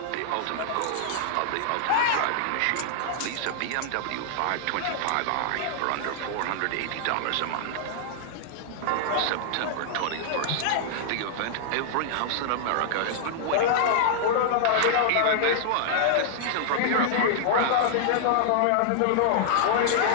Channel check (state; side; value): different; both; correlation -0.01